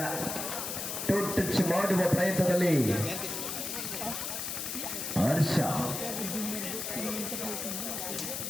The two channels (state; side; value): noise; left; hiss, 4 dB below the sound